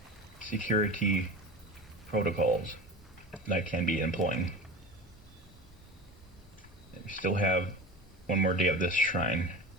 security protocols that I can be employing. We still have one more day of this shrine,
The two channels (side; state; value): both; normal; correlation 0.32